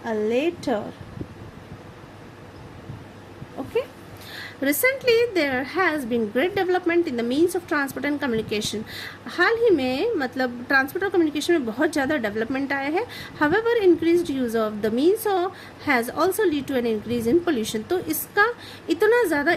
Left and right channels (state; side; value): identical; both; correlation 1.00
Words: a letter, okay. Recently there has been great development in the means of transport and communication. हाल ही में मतलब ट्रांसपोर्ट और कम्युनिकेशन में बहुत ज़्यादा डेवलपमेंट आया है। However increased use of the means has also lead to an increase in pollution. तो इसका इतना ज़्यादा